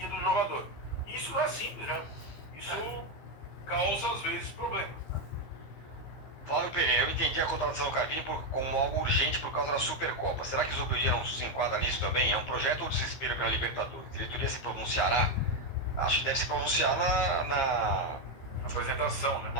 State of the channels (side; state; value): right; late; 15 ms